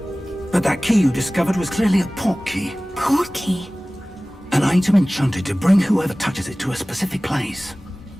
But that key you discovered was clearly a port key. Port key? An item enchanted to bring whoever touches it to a specific place.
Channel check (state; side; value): normal; both; correlation 0.98